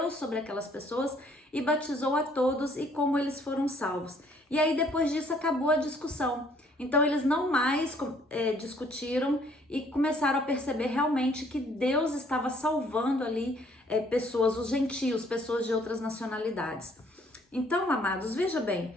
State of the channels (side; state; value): both; normal; correlation 0.62